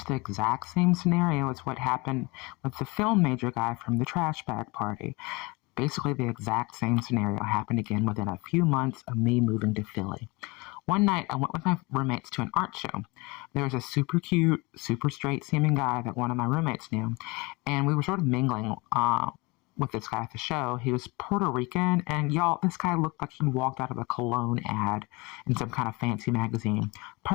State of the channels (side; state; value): right; quieter; 25.8 dB